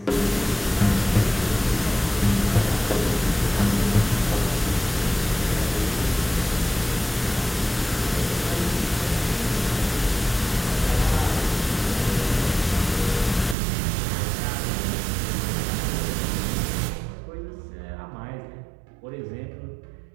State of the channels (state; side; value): drops out; left; at 13.6 s